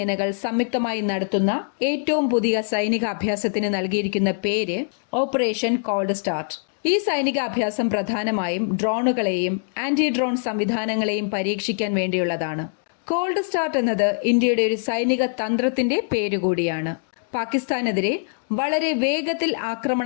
സംയുക്തമായി നടത്തുന്ന ഏറ്റവും പുതിയ സൈനിക അഭ്യാസത്തിന് നൽകിയിരിക്കുന്ന പേര് ഓപ്പറേഷൻ കോൾഡ് സ്റ്റാർട്ട്. ഈ സൈനിക അഭ്യാസം പ്രധാനമായും ഡ്രോണുകളെയും ആന്റി ഡ്രോൺ സംവിധാനങ്ങളെയും പരീക്ഷിക്കാൻ വേണ്ടിയുള്ളതാണ്. കോൾഡ് സ്റ്റാർട്ട് എന്നത് ഇന്ത്യയുടെ ഒരു സൈനിക തന്ത്രത്തിന്റെ പേരുകൂടിയാണ്. പാകിസ്ഥാനെതിരെ വളരെ വേഗത്തിൽ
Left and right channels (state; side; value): silent; right; digital silence